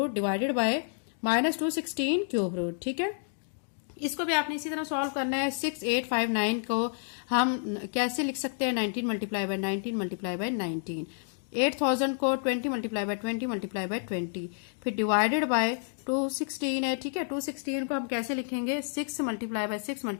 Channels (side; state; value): right; silent; digital silence